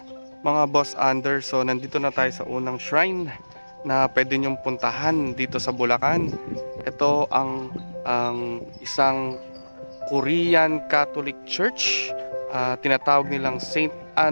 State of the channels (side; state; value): both; inverted; correlation -1.00